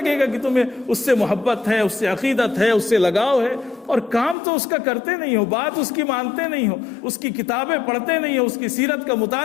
گا کہ تمہیں اس سے محبت ہے، اس سے عقیدت ہے، اس سے لگاؤ ہے۔ اور کام تو اس کا کرتے نہیں ہو، بات اس کی مانتے نہیں ہو، اس کی کتابیں پڑھتے نہیں ہو، اس کی سیرت کا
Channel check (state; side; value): drops out; right; at 4.4 s